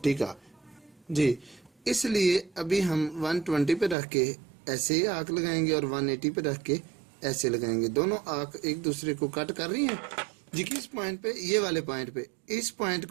का। जी इसलिए अभी हम 120 पे रख के ऐसे आर्क लगाएंगे और 180 पे रख के ऐसे लगाएंगे। दोनों आर्क एक दूसरे को कट कर रही हैं जी, किस पॉइंट पे, ये वाले पॉइंट पे, इस पॉइंट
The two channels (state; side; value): drops out; left; at 4.0 s